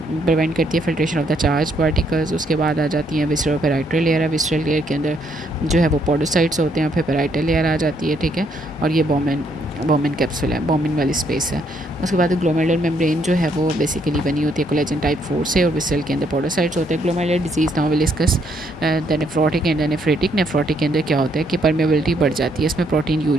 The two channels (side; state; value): both; normal; correlation 0.71